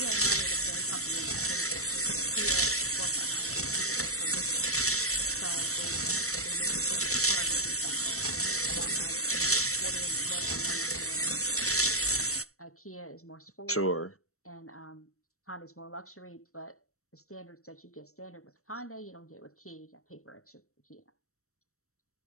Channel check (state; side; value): late; right; 0.64 ms